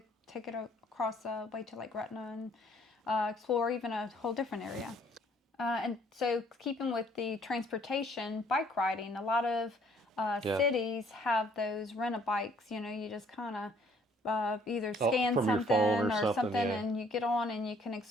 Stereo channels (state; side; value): normal; both; correlation 0.62